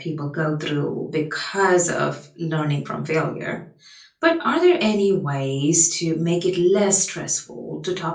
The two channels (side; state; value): both; identical; correlation 1.00